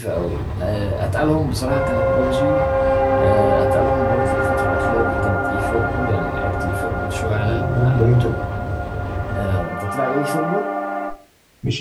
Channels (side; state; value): both; identical; correlation 1.00